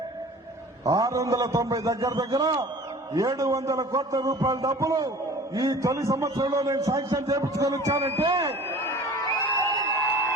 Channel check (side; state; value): both; normal; correlation 0.43